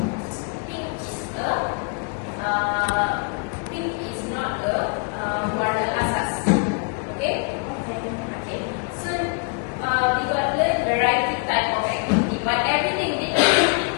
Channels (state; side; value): quieter; right; 35.2 dB